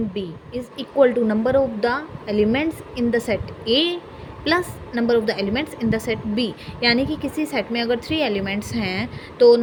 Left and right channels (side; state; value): both; identical; correlation 1.00